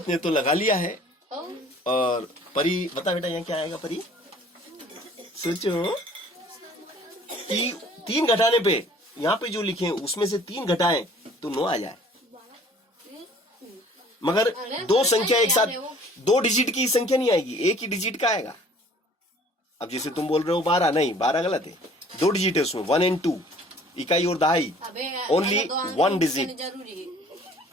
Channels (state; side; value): normal; both; correlation 0.53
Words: ने तो लगा लिया है। और परी बता बेटा यहाँ क्या आएगा, परी सोचो कि 3 घटाने पे यहाँ पे जो लिखे उसमें से 3 घटाएं तो 9 आ जाए। मगर 2 संख्या एक साथ, 2 डिजिट की संख्या नहीं आएगी, एक ही डिजिट का आएगा। अब जैसे तुम बोल रहे हो 12, नहीं 12 गलत है, 2 डिजिट है उसमें, 1 and 2, इकाई और दहाई, ओनली 1 डिजिट,